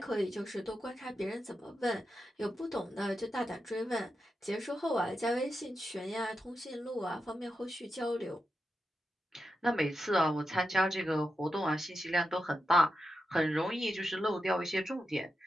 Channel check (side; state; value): both; normal; correlation 0.88